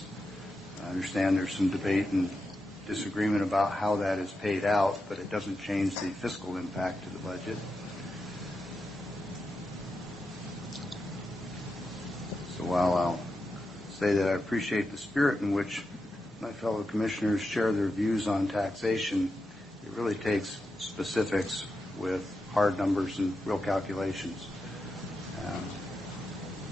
I understand there's some debate and disagreement about how that is paid out, but it doesn't change the fiscal impact to the budget. So while I'll say that I appreciate the spirit in which my fellow commissioners share their views on taxation, it really takes specifics with hard numbers and real calculations,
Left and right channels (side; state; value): both; normal; correlation 0.88